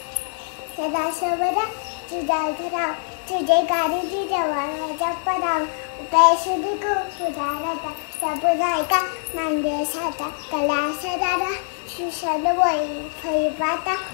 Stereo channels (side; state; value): right; silent; 63 dB below the other